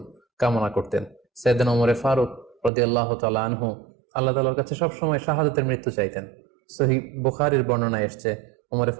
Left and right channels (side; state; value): left; drops out; at 2.7 s